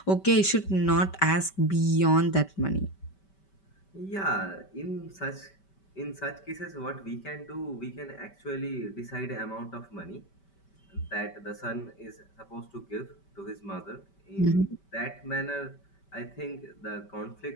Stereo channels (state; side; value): late; right; 5.2 ms